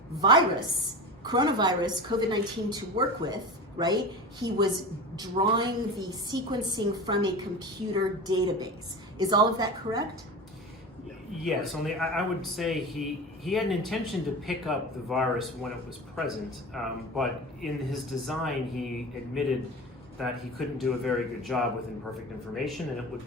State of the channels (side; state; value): both; normal; correlation 0.30